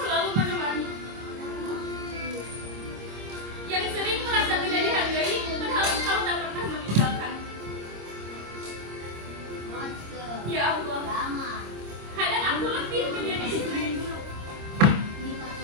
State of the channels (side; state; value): left; late; 26 ms